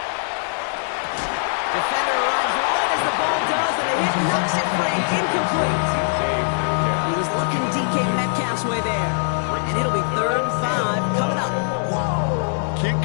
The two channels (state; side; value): silent; right; 57 dB below the other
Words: Defender arrives right as the ball does, and the hit knocks it free. Incomplete. He was looking DK Metcalf's way there. And it'll be 3rd and 5 coming up. Can't